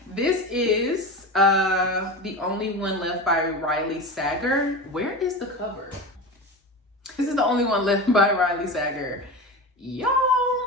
This is The Only One Left by Riley Sager. Where is the cover? This is The Only One Left by Riley Sager. Y'all,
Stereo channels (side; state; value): both; normal; correlation 0.26